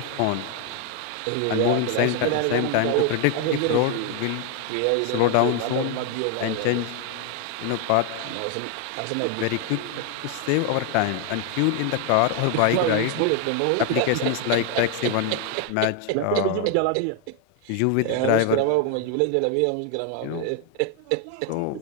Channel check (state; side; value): different; both; correlation 0.01